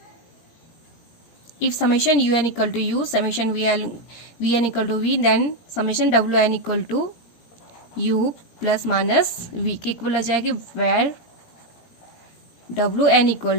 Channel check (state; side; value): late; right; 17 ms